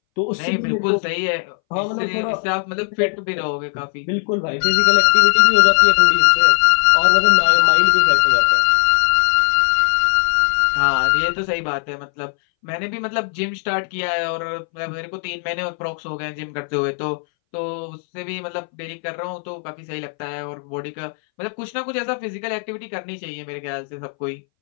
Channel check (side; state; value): right; silent; 63 dB below the other